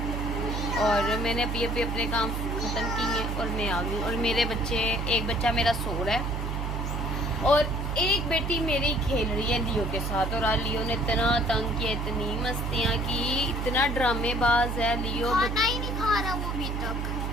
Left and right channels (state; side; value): noise; right; hum, 2 dB below the sound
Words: और मैंने अभी अपने काम ख़त्म किए और मैं आ गई। और मेरे बच्चे, एक बच्चा मेरा सो रहा है और एक बेटी मेरी खेल रही है लियो के साथ। और आज लियो ने इतना तंग किया, इतनी मस्तियाँ की, इतना ड्रामेबाज है लियो, खाना ही नहीं खा रहा वो अभी तक